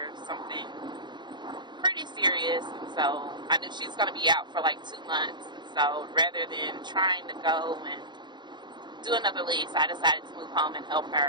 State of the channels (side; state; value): left; late; 0.22 ms